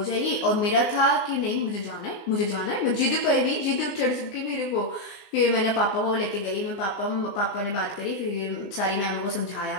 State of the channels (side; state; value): right; late; 20 ms